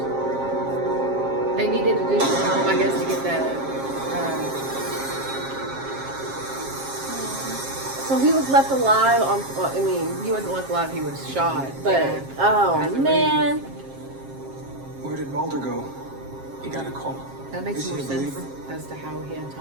They needed additional help, I guess, to get that. So he was left alive on, well, I mean, He wasn't left alive, he was shot. but, Yeah. oh As a man. Where did Mulder go? You got a call. That makes Is he more a sense believer? as to how he had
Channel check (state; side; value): late; left; 7.5 ms